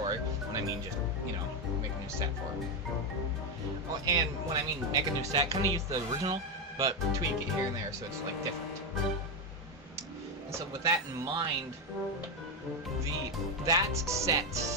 when I mean just, make a new set for it. Well, and when I mean make a new set, kinda use the original, but tweak it here and there so it's different. And so with that in mind, that set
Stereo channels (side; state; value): both; normal; correlation 0.08